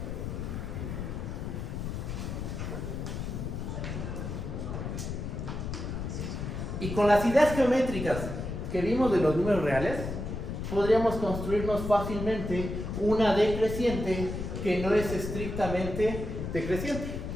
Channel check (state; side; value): noise; left; rumble, 5 dB below the sound